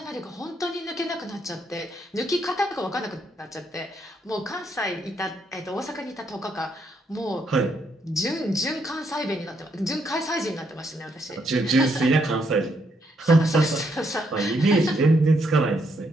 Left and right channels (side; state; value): both; normal; correlation 0.75